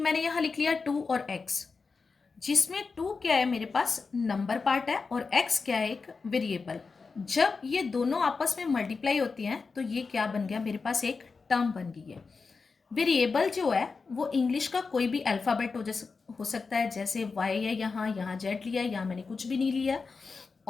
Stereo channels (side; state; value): right; quieter; 4.6 dB